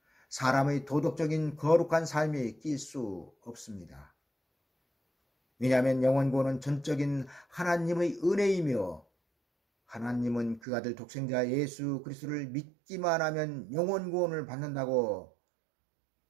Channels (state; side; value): drops out; left; at 10.6 s